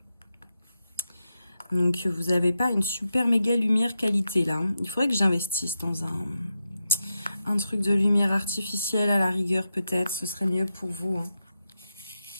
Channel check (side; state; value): both; inverted; correlation -0.88